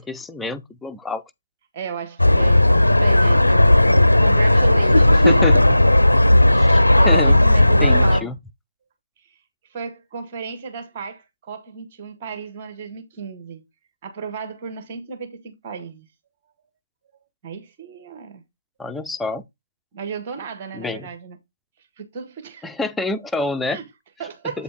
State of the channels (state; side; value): inverted; both; correlation -0.91